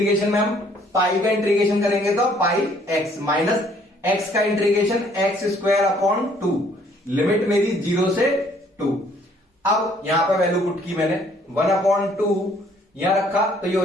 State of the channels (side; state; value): both; normal; correlation 0.62